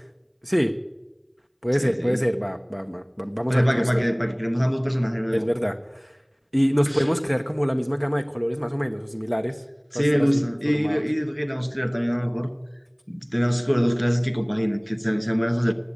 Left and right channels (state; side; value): identical; both; correlation 1.00